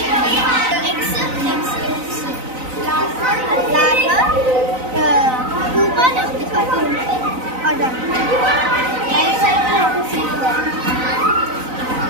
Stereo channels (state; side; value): late; left; 4.0 ms